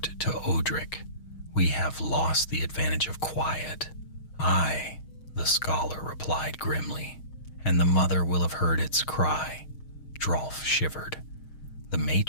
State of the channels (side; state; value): right; late; 6.4 ms